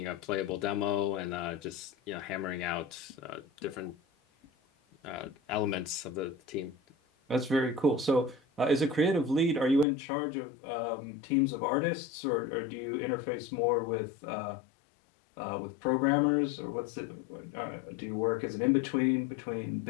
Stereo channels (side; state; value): right; drops out; at 9.9 s